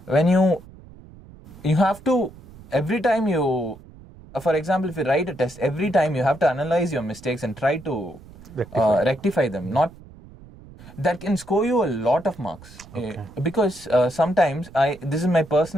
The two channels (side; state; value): right; noise; rumble, 20 dB below the sound